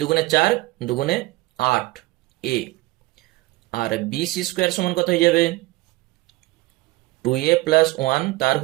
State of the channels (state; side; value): quieter; left; 20.7 dB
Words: দুগুণে 4, দুগুণে 8 এ, আর বিসি স্কোয়ার সমান কত হয়ে যাবে 2a+1 তার